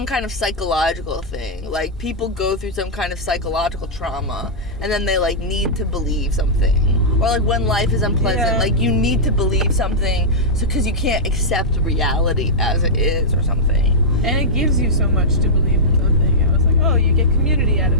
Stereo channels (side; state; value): both; normal; correlation -0.10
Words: kind of psychological thing. Like, people go through some kind of psychological trauma, and then they, like, need to believe something. Or, like, when life is unpleasant, like, you need to believe something because you can't accept reality as it is or something. And it gives you so much to believe in something. I was like, oh, you get community out